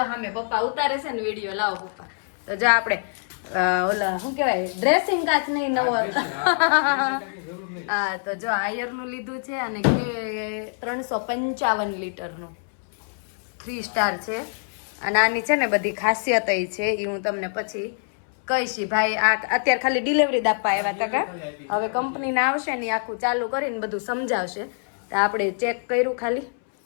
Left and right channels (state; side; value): silent; right; 62 dB below the other